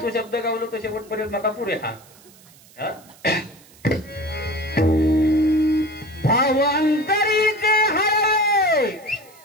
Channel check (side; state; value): right; noise; hiss, 25 dB below the sound